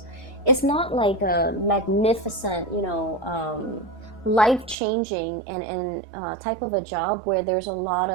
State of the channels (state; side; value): drops out; left; at 4.8 s